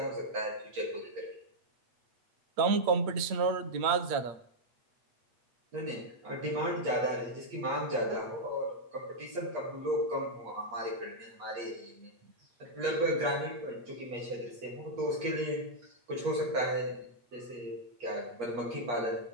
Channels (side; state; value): left; late; 8.7 ms